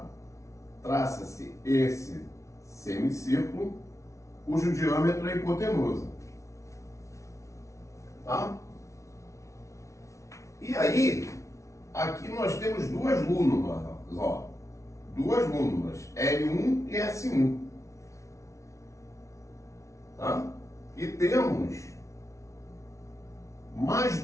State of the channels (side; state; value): right; late; 0.14 ms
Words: Traça-se esse semicírculo cujo diâmetro é hipotenusa. Tá? E aí, aqui nós temos duas lúnulas, ó. Duas lúnulas, L1 e S1. Tá? E temos mais